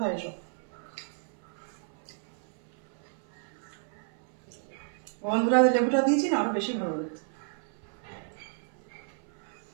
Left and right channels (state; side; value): silent; left; 56 dB below the other